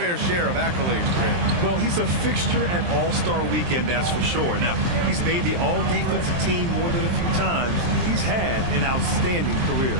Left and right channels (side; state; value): left; late; 23 ms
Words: share of accolades, Grant. Well, he's a fixture at All-Star Weekend, that's for sure. Now, he's made the All-Defensive team more than a few times. He's had an outstanding career.